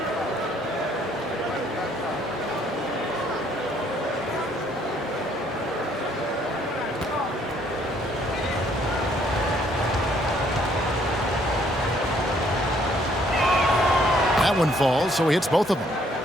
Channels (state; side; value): normal; both; correlation 0.65